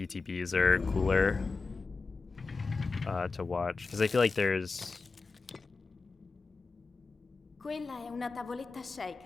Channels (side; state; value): right; quieter; 4.2 dB